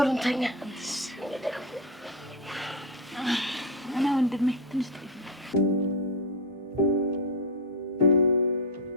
እንተኛ። እና ወንድሜ ትንሽ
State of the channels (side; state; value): both; normal; correlation 0.09